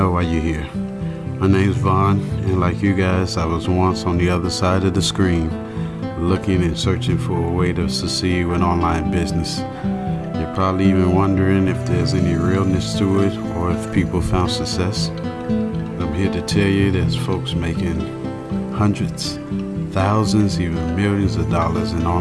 why you're here. My name's Vaughn, and like you guys, I was once on the other side of the screen, looking and searching for a way to succeed with online business. You're probably even wondering if there's any realness to it or if people found success. I'm here to tell you there's folks making hundreds, thousands, even millions of dollars in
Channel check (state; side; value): identical; both; correlation 1.00